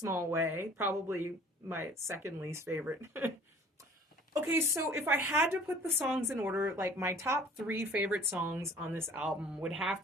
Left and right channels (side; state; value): both; normal; correlation 0.50